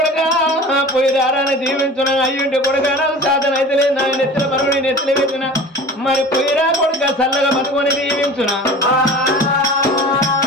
దీవించున అయ్యుంటే కొడుక సాధన అయితే లేదు నా నెత్తిన మరుగుని నెత్తిన పెట్టిన మరి పోయిరా కొడుక చల్లగా బతుకొని దీవించునా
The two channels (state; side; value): normal; both; correlation 0.39